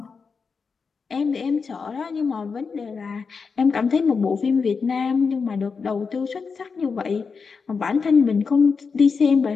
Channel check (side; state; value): right; quieter; 5.2 dB